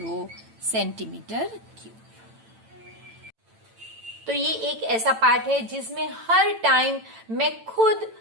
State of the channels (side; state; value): left; late; 9.0 ms